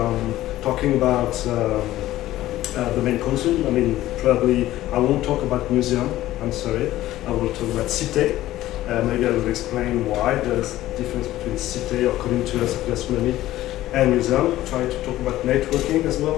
talking about the main content. I mean, probably I won't talk about museum, I'm sorry. I will talk about Cités. Maybe I will explain why there's a difference between Cités, or according to us, gastronomy, and museum. Try to talk about networking as well,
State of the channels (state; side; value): quieter; right; 15.0 dB